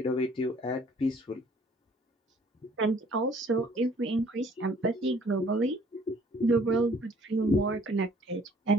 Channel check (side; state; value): both; normal; correlation 0.57